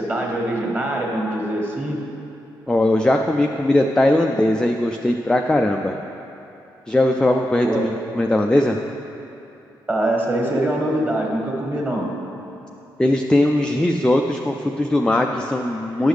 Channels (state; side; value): normal; both; correlation 0.89